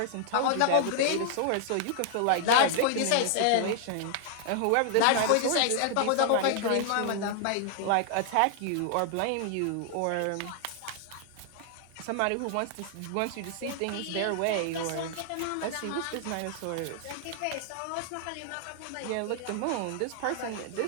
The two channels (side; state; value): both; different; correlation 0.00